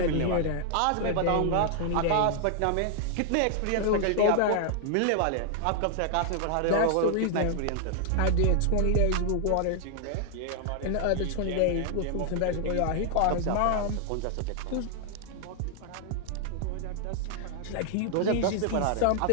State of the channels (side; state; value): both; different; correlation 0.00